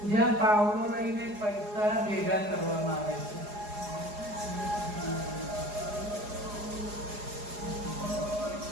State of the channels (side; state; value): left; late; 4.8 ms